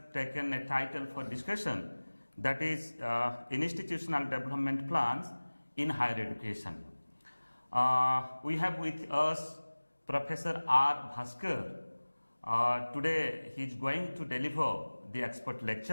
taken a title for discussion, that is Institutional Development Plans in Higher Education. We have with us Professor R. Bhaskar. Today he is going to deliver the expert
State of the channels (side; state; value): both; inverted; correlation -1.00